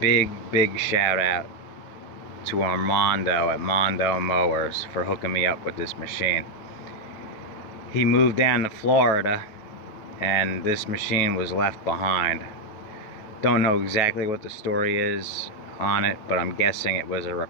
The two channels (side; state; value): right; late; 9.2 ms